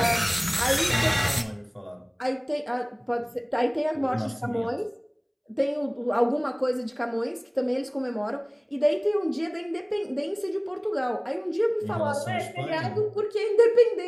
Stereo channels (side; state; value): both; identical; correlation 1.00